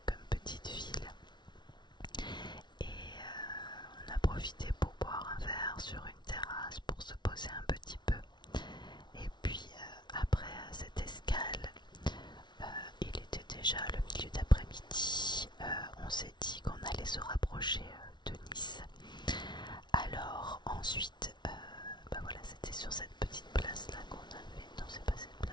comme petite ville. Et on a profité pour boire un verre sur une terrasse pour se poser un petit peu. Et puis après cette escale, il était déjà le milieu d'après-midi. On s'est dit qu'on allait se rapprocher de Nice. Alors ensuite, bah voilà, c'était sur cette petite place là qu'on avait. Non, c'est pas cette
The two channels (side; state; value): right; late; 0.21 ms